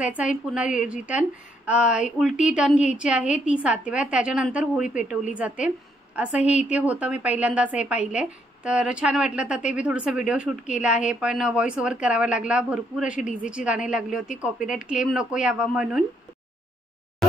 आहे, पुन्हा रिटर्न उलटी टर्न घ्यायची आहे ती 7 वेळा, त्याच्यानंतर होळी पेटवली जाते। असं हे इथे होतं, मी पहिल्यांदाच हे पाहिलंय तर छान वाटलं। तर ते मी थोडंसं व्हिडिओ शूट केला आहे, पण व्हॉइस ओव्हर करावा लागला। भरपूर अशी डीजेची गाणी लागली होती, कॉपीराइट क्लेम नको यावा म्हणून।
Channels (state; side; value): normal; both; correlation 0.73